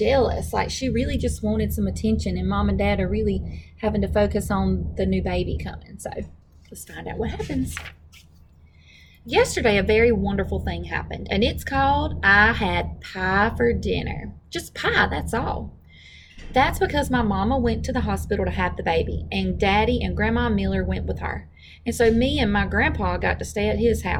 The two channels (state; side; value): identical; both; correlation 1.00